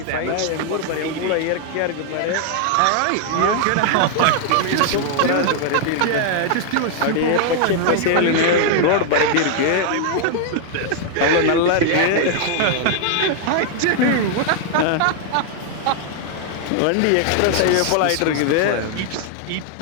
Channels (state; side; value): different; both; correlation 0.00